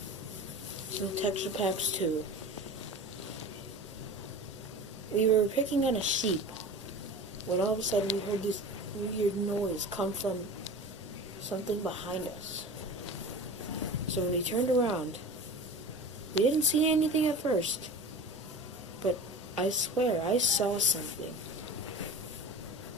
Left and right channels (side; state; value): both; normal; correlation 0.35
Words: Some texture packs too. We were picking on a sheep when all of a sudden we heard this weird noise come from something behind us. So when we turned around, we didn't see anything at first, but I swear I saw something.